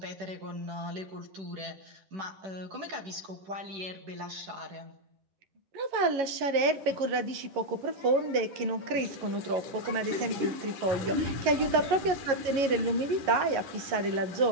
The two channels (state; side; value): late; left; 11 ms